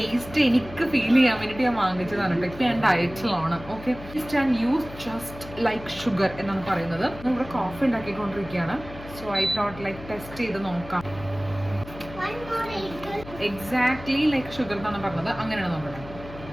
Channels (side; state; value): left; noise; hum, 15 dB below the sound